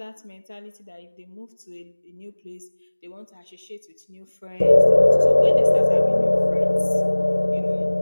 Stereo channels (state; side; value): inverted; both; correlation -1.00